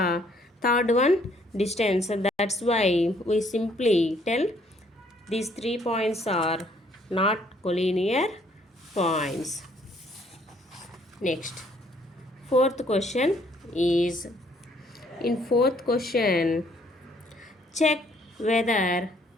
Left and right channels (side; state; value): both; normal; correlation 0.65